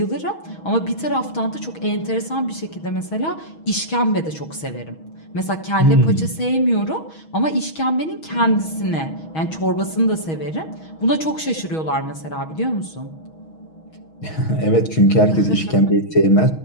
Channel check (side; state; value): right; late; 6.3 ms